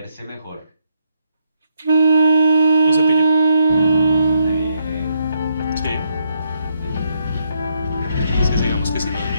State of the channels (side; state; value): both; inverted; correlation -0.76